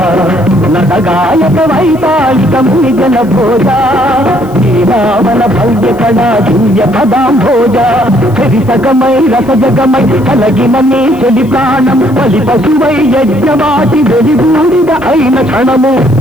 నటగాయక వైతాళిక మునిజన భోజ. శ్రీరామన భవ్య కళా దివ్య పదాంభోజ. చరితకమై రసజగమై కలగిన నీ చెలి ప్రాణం బలి పశువై యజ్ఞవాటి వెలిగూడిద అయిన క్షణము.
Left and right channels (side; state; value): left; noise; hiss, 26 dB below the sound